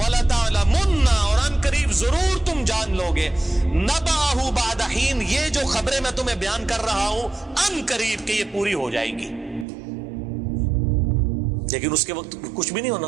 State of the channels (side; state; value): left; drops out; at 9.7 s